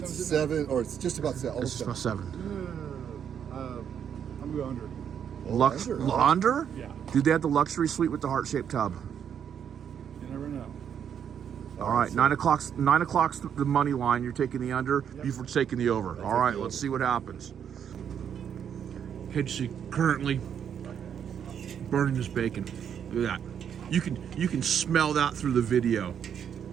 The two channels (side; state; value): left; quieter; 8.4 dB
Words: 7, or it's just about 7. It's about 7. I'm going under. Under? Yeah. Dude, they had the luxury suite with the heart-shaped tub. You never know. All right, 9 o'clock's the money line. You're taking the under. Yep. Buford's taking the over. All right, let's see what happens. KJC currently burning his bacon. Look at that. You can smell that through the video.